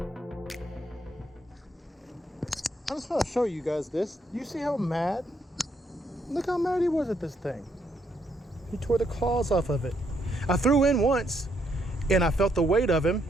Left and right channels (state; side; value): normal; both; correlation 0.74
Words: I just want to show you guys this. You see how mad? Look how mad he was at this thing. He tore the claws off of it. I threw in once and I felt the weight of him